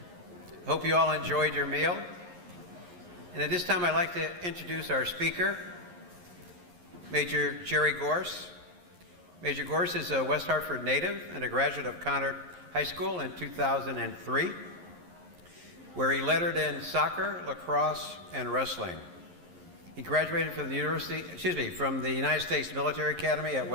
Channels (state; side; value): late; left; 11 ms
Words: Hope you all enjoyed your meal. And at this time, I'd like to introduce our speaker, Major Jerry Gorse. Major Gorse is a West Hartford native and a graduate of Conard High School in 2003, where he lettered in soccer, lacrosse, and wrestling. He graduated from the United States Military Academy at